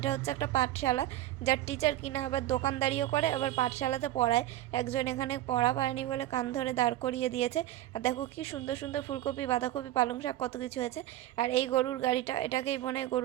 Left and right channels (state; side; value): quieter; left; 14.5 dB